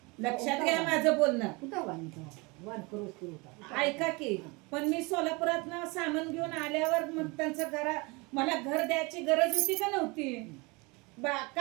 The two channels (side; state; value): left; quieter; 26.9 dB